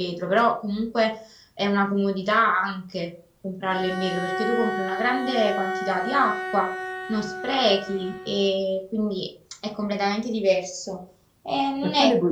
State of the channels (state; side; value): identical; both; correlation 1.00